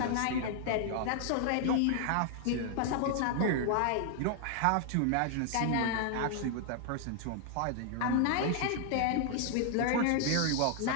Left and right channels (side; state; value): both; different; correlation 0.00